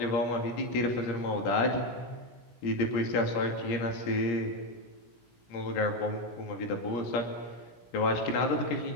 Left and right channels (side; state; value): right; late; 17 ms